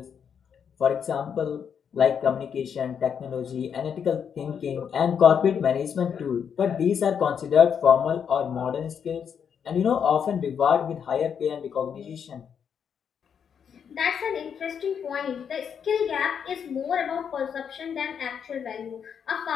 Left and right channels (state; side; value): quieter; right; 7.5 dB